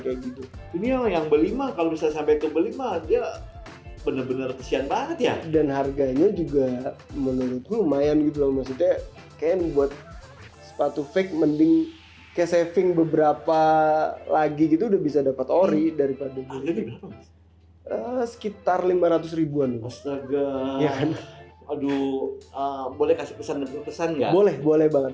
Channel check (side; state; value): both; identical; correlation 1.00